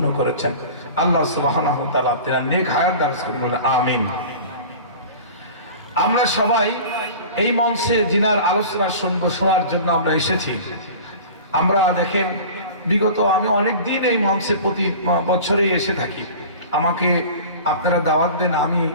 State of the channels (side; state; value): both; inverted; correlation -0.38